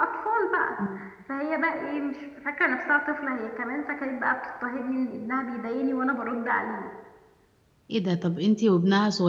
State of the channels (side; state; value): both; identical; correlation 1.00